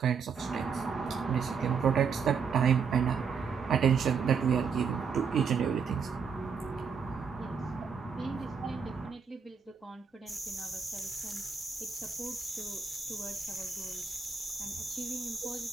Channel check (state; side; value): quieter; left; 6.0 dB